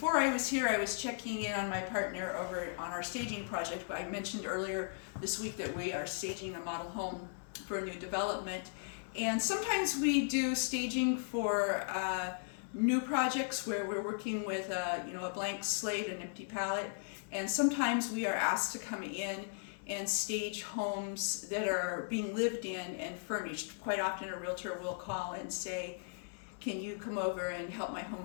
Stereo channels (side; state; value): right; silent; digital silence